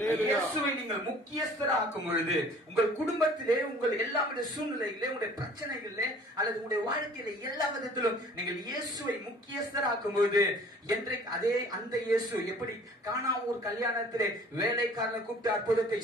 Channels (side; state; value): both; normal; correlation 0.51